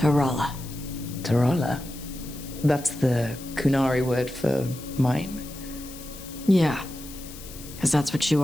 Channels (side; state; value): left; noise; hiss, 15 dB below the sound